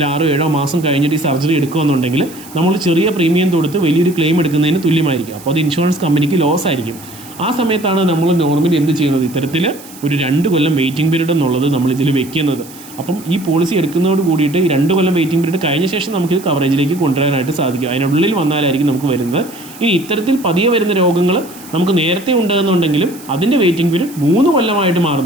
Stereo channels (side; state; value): right; noise; hiss, 19 dB below the sound